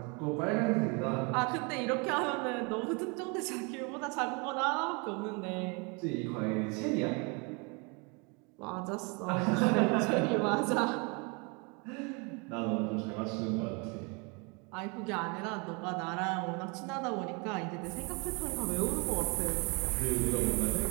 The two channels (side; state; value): left; quieter; 31.6 dB